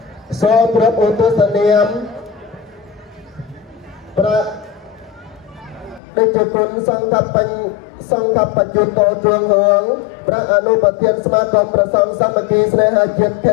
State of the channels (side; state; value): right; drops out; at 6.0 s